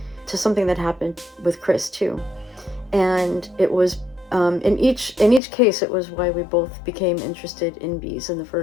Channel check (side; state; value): right; drops out; at 5.4 s